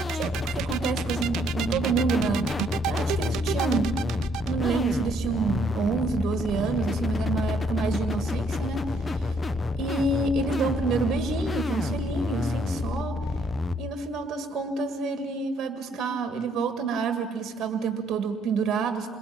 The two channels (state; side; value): normal; both; correlation 0.68